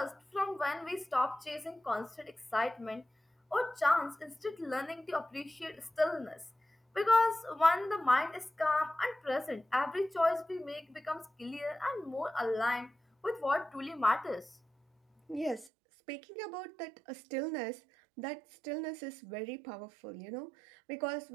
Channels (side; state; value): left; drops out; at 15.7 s